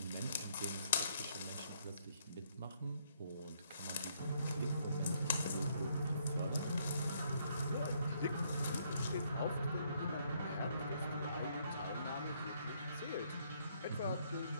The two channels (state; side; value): inverted; both; correlation -0.70